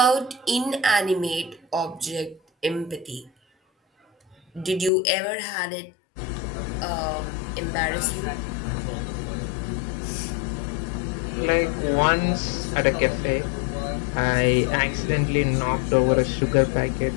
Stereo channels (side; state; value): right; drops out; at 4.9 s